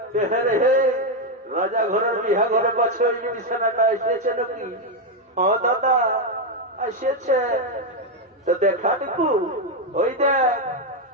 হে রাজা ঘরের বিহা ঘরে পাচ্ছে ওই বিছানাটা এসেছে নাকি? ও দাদা এসেছে, তো দেখা দেখু, ওই দেখ,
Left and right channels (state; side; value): normal; both; correlation 0.04